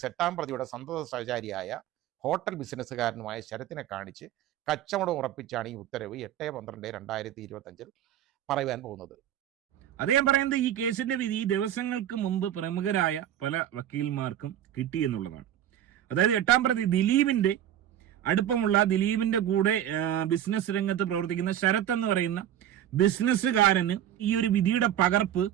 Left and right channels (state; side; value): quieter; left; 11.1 dB